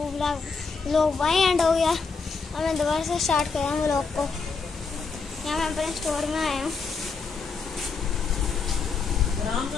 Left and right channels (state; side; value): quieter; right; 4.9 dB